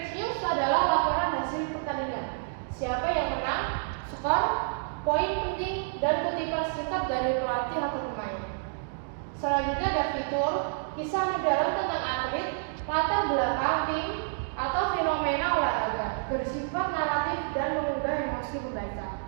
news adalah laporan hasil pertandingan, siapa yang menang, skor, poin penting, dan kutipan singkat dari pelatih atau pemain. Selanjutnya ada fitur, kisah mendalam tentang atlet, latar belakang tim, atau fenomena olahraga, bersifat naratif dan mengunggah emosi pembaca.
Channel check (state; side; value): silent; left; digital silence